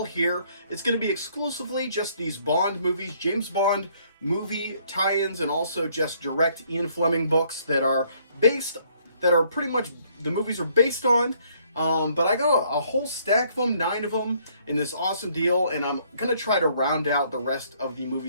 here. It's going to be exclusively just these Bond movies, James Bond movie tie-ins, and also just direct Ian Fleming books that are pretty much the movies are based on. But I got a whole stack of them, 9 of them, in this awesome deal, and I'm going to try to round out the rest of the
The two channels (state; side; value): inverted; both; correlation -0.65